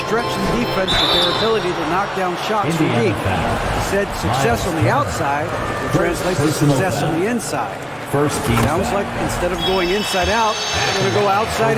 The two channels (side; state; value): both; identical; correlation 1.00